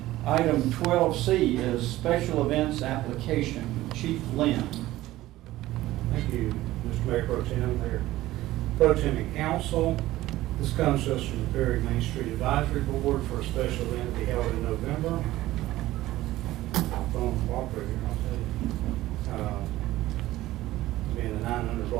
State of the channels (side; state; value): left; quieter; 16.1 dB